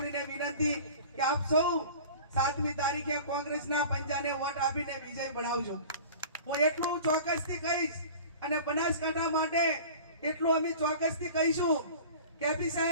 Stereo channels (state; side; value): inverted; both; correlation -0.40